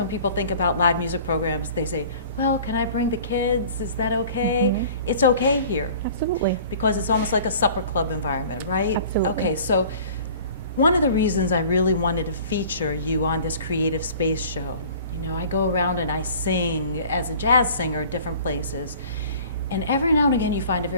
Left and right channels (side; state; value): both; inverted; correlation -0.47